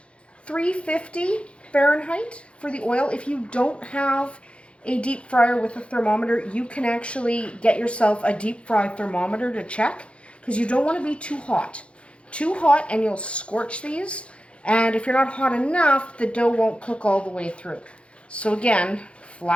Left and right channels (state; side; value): late; right; 0.060 ms